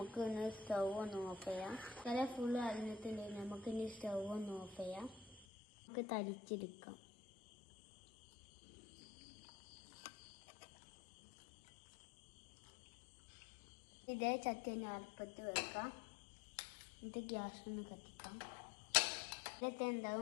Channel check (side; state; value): right; drops out; at 5.5 s